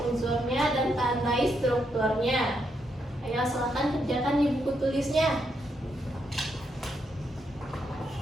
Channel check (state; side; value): normal; both; correlation 0.79